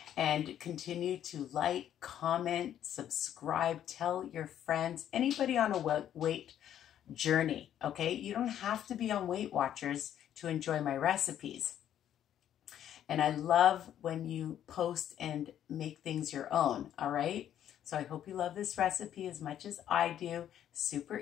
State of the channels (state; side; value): quieter; right; 10.6 dB